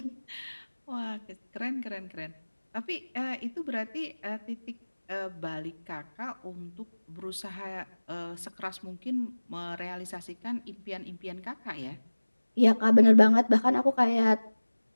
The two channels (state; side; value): inverted; both; correlation -1.00